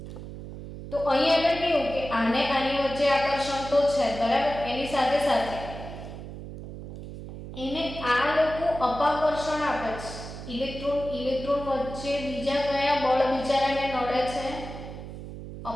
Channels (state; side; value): noise; right; hum, 11 dB below the sound